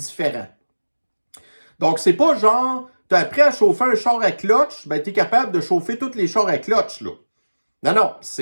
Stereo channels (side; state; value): both; inverted; correlation -1.00